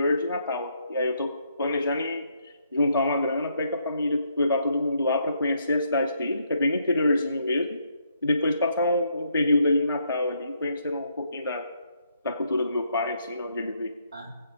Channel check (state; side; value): inverted; both; correlation -0.74